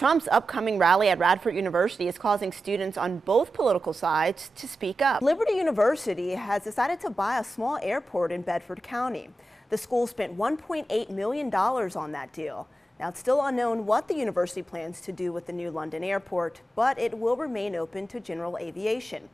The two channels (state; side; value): normal; both; correlation 0.91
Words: upcoming rally at Radford University is causing students on both political sides to speak up. Liberty University has decided to buy a small airport in Bedford County. The school spent $1.8 million on that deal. Now, it's still unknown what the university plans to do with the new London airport, but it will remain open to general aviation.